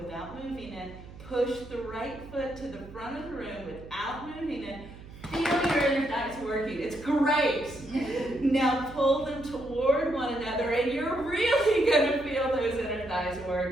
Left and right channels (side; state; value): right; noise; hum, 16 dB below the sound